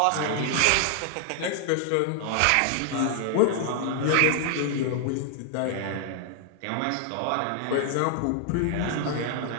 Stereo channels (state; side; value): different; both; correlation 0.00